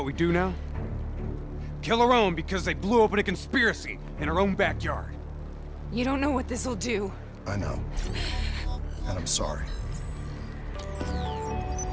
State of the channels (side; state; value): both; identical; correlation 1.00